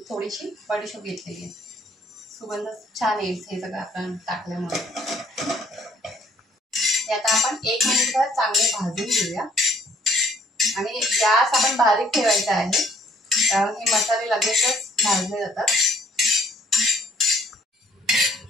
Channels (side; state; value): both; normal; correlation 0.63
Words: थोडीशी बडीशेप घेतलेली आहे। सुगंध छान येईल हे सगळं आपण टाकल्यामुळे। ते आता आपण 1 मिनिटभर चांगले भाजून घेऊया आणि गॅस आपण बारीक ठेवायचा आहे, कारण हे मसाले लगेचच भाजले जातात।